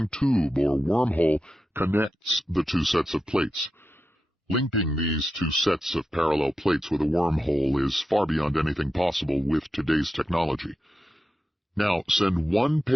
tube or wormhole connects the two sets of plates. Linking these two sets of parallel plates with a wormhole is far beyond anything possible with today's technology. Now, send one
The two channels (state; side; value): normal; both; correlation 0.90